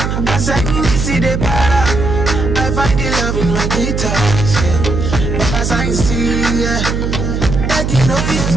As I see the para, I find the love in my guitars. But as I see, yeah. You know it's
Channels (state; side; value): noise; right; hum, 1 dB below the sound